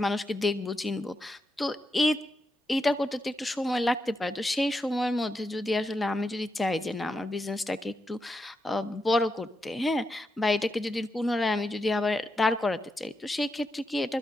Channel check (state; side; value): normal; both; correlation 0.85